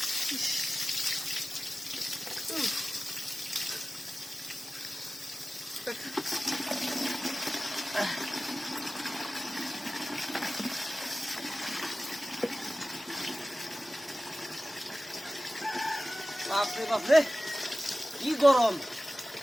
বাপরে বাপরে কি গরম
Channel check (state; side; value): normal; both; correlation 0.96